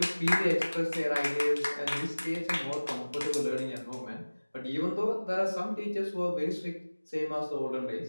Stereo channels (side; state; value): both; inverted; correlation -1.00